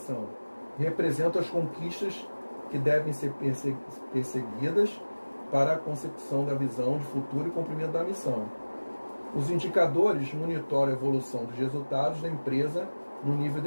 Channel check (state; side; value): inverted; both; correlation -1.00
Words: Representam as conquistas que devem ser perseguidas para a consecução da visão de futuro e cumprimento da missão. Os indicadores monitoram a evolução dos resultados da empresa no nível